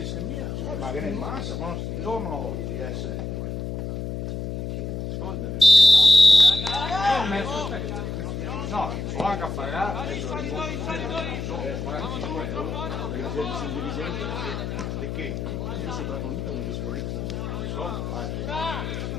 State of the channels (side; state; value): left; noise; hum, 4 dB below the sound